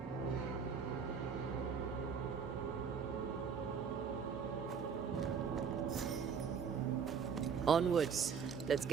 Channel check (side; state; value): left; quieter; 6.5 dB